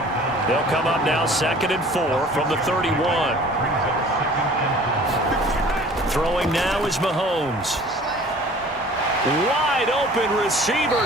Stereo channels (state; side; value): normal; both; correlation 0.48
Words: They'll come up now 2nd and 4 from the 31. Throwing now is Mahomes. Wide open